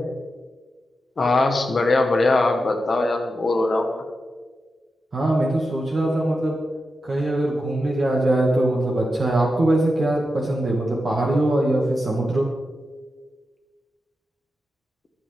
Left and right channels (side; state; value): both; normal; correlation 0.89